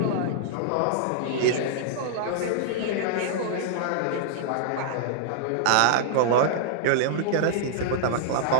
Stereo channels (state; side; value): different; both; correlation -0.01